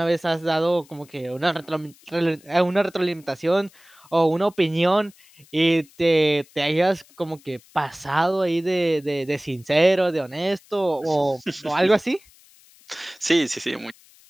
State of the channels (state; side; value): noise; left; hiss, 27 dB below the sound